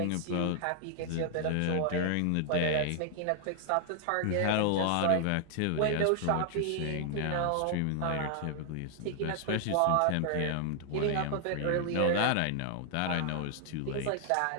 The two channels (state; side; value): different; both; correlation 0.00